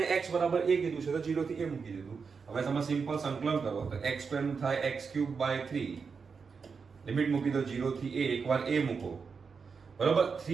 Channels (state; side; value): quieter; left; 5.4 dB